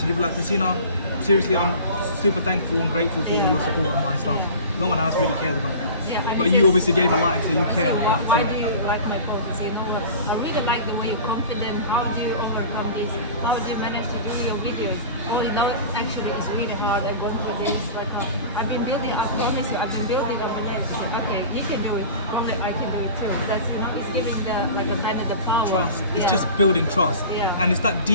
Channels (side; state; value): both; inverted; correlation -0.37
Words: You'll be like, Christina, seriously, I'm super thankful and grateful for all your support on my stuff. No one else really cares about it. Yeah, and But it's you just- obviously gave a like, so you care. Why Right? do you like my posts? You know, I really like the way you're confident. How do you overcome this? How do you manage to do your videos? Oh, you know, actually, it's really hard. I go for this. Like, I've been building. I promise you, I've been building up and then say, okay, he can do it. Only I can do it too. That's it's giving the like a kind of the power. Trust. It's Yeah. just building trust. Yeah. And it's that